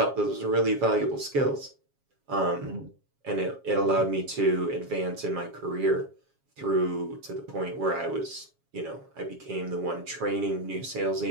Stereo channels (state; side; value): late; left; 7.3 ms